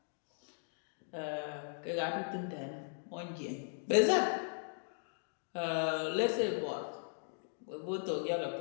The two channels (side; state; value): right; silent; digital silence